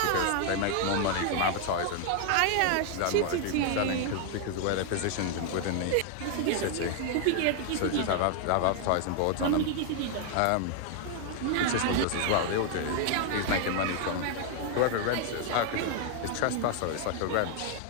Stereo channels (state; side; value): different; both; correlation 0.00